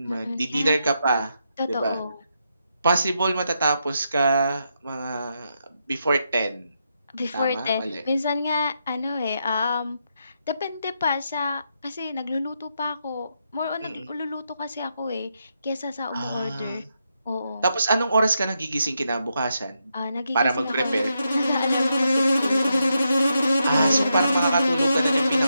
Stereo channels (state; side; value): inverted; both; correlation -0.82